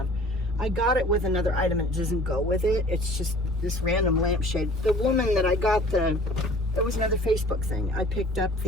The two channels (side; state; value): both; normal; correlation 0.49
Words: I got it with another item and it doesn't go with it. It's just this random lamp shade. The woman that I got there was another Facebook thing. I picked up